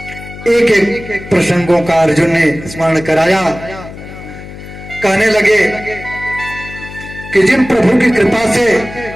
एक एक प्रसंगों का अर्जुन ने स्मरण कराया। कहने लगे कि जिन प्रभु की कृपा से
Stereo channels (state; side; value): noise; left; hum, 14 dB below the sound